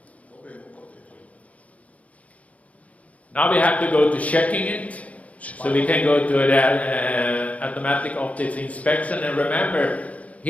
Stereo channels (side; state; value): right; late; 0.068 ms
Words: Dovremo proteggerlo. Now we have to go to checking it. So we can go to the automatic optics inspection, and remember,